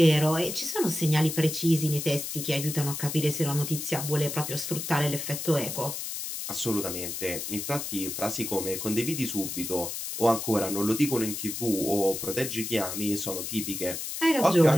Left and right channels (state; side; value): noise; left; hiss, 5 dB below the sound